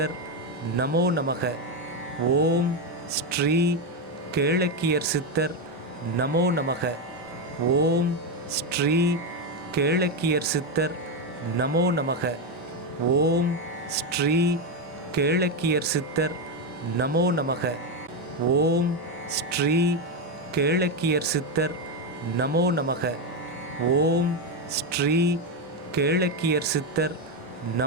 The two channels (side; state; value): both; normal; correlation 0.08